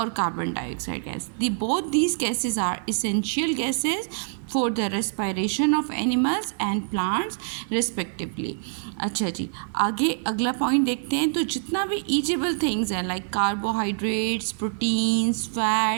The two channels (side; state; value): left; silent; digital silence